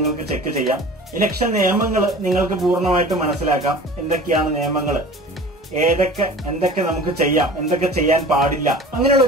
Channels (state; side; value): normal; both; correlation 0.40